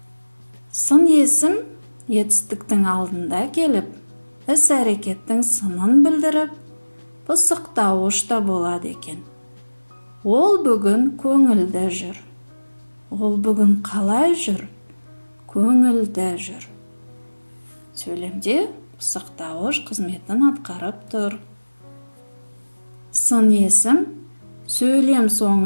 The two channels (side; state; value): both; inverted; correlation -1.00